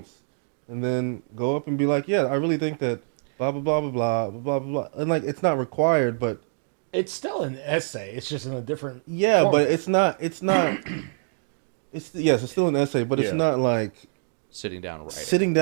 and then go up and be like, yeah, I really think that blah, blah, blah, blah, blah, blah, blah, blah. And, like, it's not required, but It's still an essay. It's just in a different yeah, format. but it's not it's still an essay, but it's not like sitting down and writing. Sitting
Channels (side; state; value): left; silent; digital silence